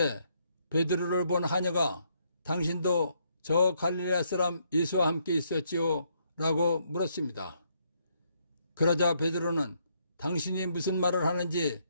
베드로를 본 하녀가 당신도 저 갈릴레아 사람 예수와 함께 있었지요? 라고 물었습니다. 그러자 베드로는 당신이 무슨 말을 하는지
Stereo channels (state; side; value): inverted; both; correlation -0.73